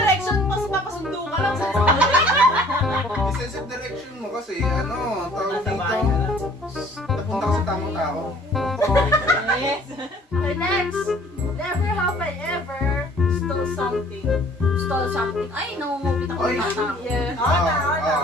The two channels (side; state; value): both; normal; correlation 0.54